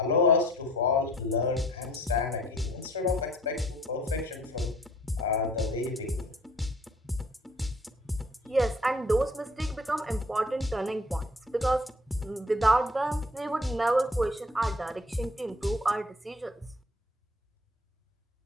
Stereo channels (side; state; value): both; normal; correlation 0.54